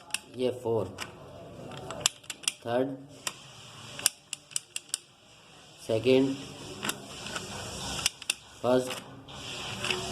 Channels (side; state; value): both; identical; correlation 1.00